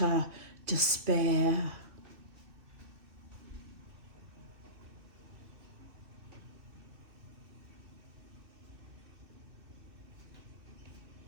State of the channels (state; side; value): late; left; 2.6 ms